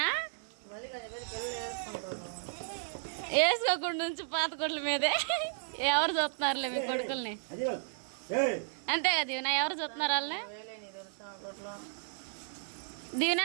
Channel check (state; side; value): silent; left; digital silence